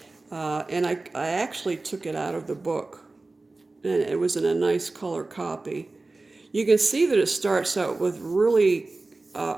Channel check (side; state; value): left; quieter; 3.3 dB